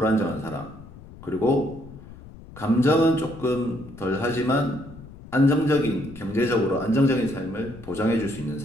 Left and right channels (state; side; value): noise; left; rumble, 17 dB below the sound